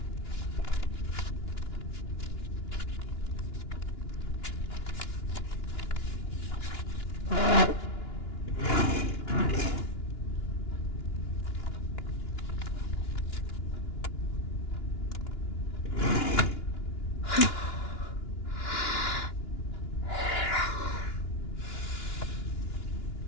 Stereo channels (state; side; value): late; right; 2.9 ms